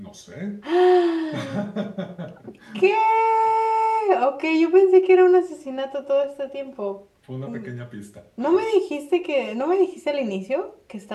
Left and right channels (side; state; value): both; identical; correlation 1.00